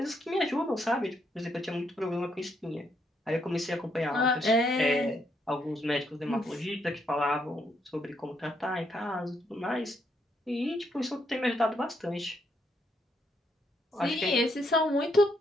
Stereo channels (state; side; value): normal; both; correlation 0.75